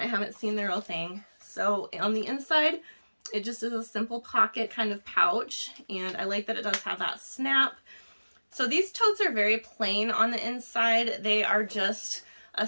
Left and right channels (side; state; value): both; inverted; correlation -1.00